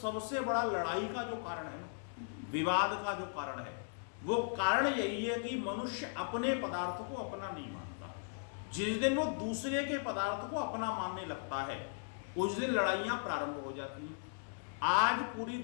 बड़ा लड़ाई का जो कारण है ना, विवाद का जो कारण है, वो कारण यही है कि मनुष्य अपने पदार्थ को अपना नहीं मानता। जिस दिन वो दूसरे के पदार्थ को अपना मानने लगता है, उस दिन लड़ाइयां प्रारंभ हो जाती हैं। आज पूरी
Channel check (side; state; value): right; silent; digital silence